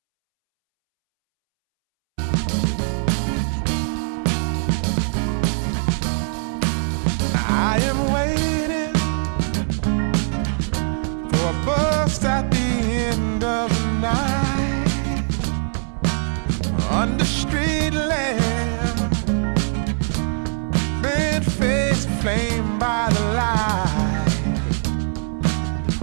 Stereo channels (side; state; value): left; silent; 65 dB below the other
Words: I am waiting for a bus at the end of the night. Under street lamp, bent face flamed by the light.